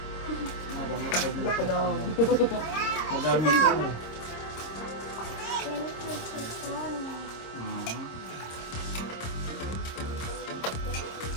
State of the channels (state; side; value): late; right; 26 ms